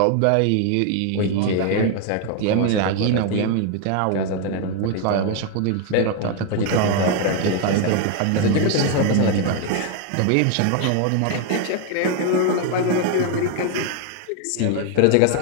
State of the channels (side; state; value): both; different; correlation 0.01